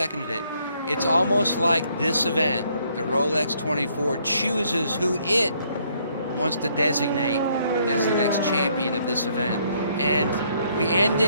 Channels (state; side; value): inverted; both; correlation -0.68